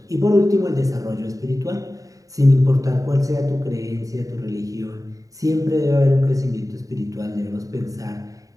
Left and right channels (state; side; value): late; left; 0.16 ms